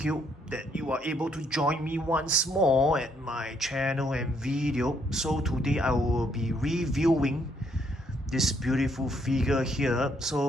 you that you are able to join me once more at my channel and video. So today I will be reviewing this beautiful figure here.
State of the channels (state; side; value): normal; both; correlation 0.71